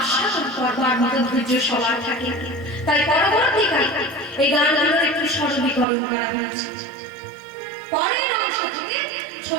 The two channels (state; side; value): drops out; left; at 5.9 s